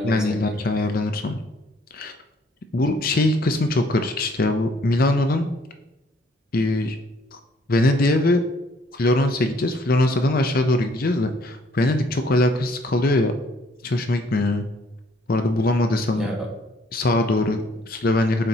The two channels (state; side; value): normal; both; correlation 0.63